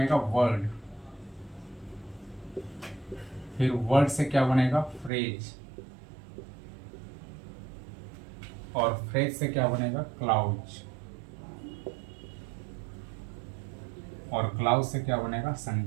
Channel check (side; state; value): left; drops out; at 5.1 s